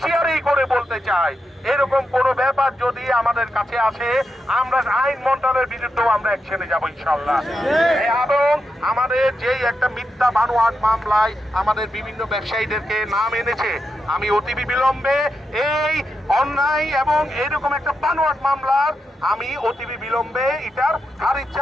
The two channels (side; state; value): both; normal; correlation 0.86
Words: করে বলতে চাই, এরকম কোনো ব্যাপার যদি আমাদের কাছে আসে আমরা আইন মন্ত্রণালয়ের বিরুদ্ধেও আমরা অ্যাকশনে যাব ইনশাআল্লাহ। এবং আমাদের যেই একটা মিথ্যা বানোয়াট মামলায় আমাদের বিভিন্ন ব্যবসায়ীদেরকে নাম এনেছে, আমি অতিবি বিলম্বে এই অন্যায় এবং এরকম একটা বানোয়াট মামলার আমি অতিবি বিলম্বে এটার খারিজ